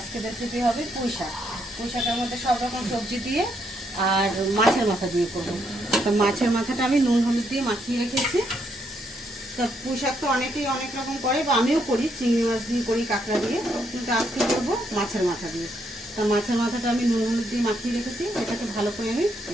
রেসিপি হবে পুঁই শাক। পুঁই শাকের মধ্যে সব রকম সবজি দিয়ে আর মাছের মাথা দিয়ে করবো। তো মাছের মাথাটা আমি নুন হলুদ দিয়ে মাখিয়ে রেখেছি। তো পুঁই শাক তো অনেকেই অনেক রকম করে, বা আমিও করি, চিংড়ি মাছ দিয়ে করি, কাঁকড়া দিয়ে, কিন্তু আজকে করবো মাছের মাথা দিয়ে। তো মাছের মাথাটা আমি নুন হলুদ দিয়ে মাখিয়ে রেখেছি, এটাকে ভালো করে আমি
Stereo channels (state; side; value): normal; both; correlation 0.75